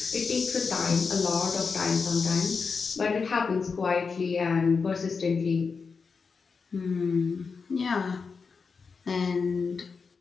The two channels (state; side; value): quieter; right; 5.1 dB